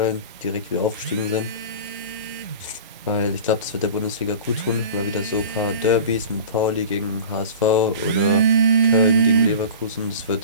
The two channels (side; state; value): both; inverted; correlation -0.37